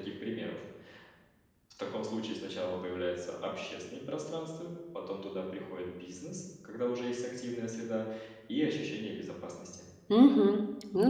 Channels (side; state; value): both; identical; correlation 1.00